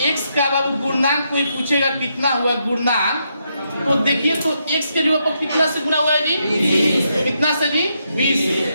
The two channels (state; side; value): inverted; both; correlation -0.80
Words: x का बाबू गुणनांक कोई पूछेगा कितना हुआ गुणनांक, तो देखिए तो x के जो कितना से गुणा हुआ है जी? 20। कितना से जी?